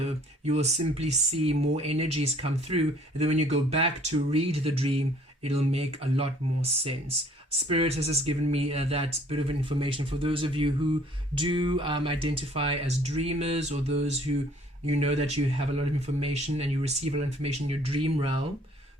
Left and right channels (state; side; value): normal; both; correlation 0.57